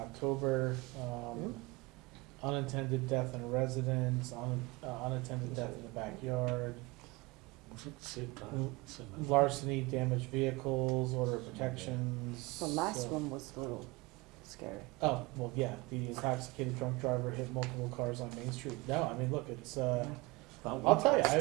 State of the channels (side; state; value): left; quieter; 23.5 dB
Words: unintended death in a residence, unattended death in the backyard, Same time, same as- larceny, damaged vehicles, order of protections. The last so- one was a little scary. Oh, well, yeah, the intoxicated drunk driver hit multiple cars on Main Street. No, I mean, look, it's, I'll tell you,